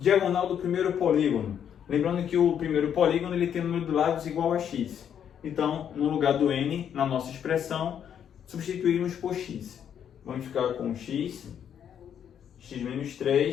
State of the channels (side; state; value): right; quieter; 8.8 dB